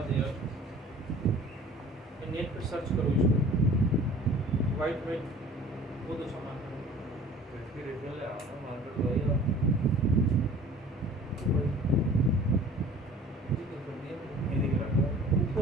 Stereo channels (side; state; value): both; normal; correlation 0.47